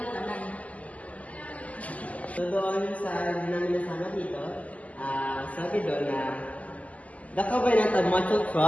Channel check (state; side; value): late; right; 0.072 ms